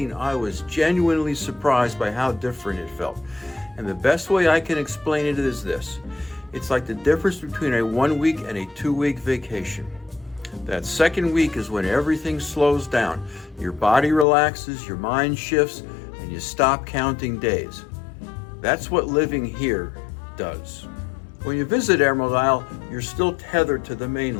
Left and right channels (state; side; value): drops out; right; at 14.2 s